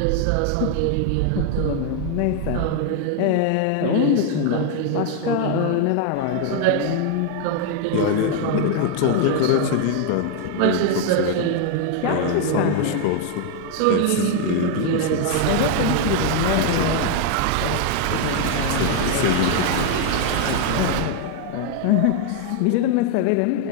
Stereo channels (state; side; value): different; both; correlation 0.00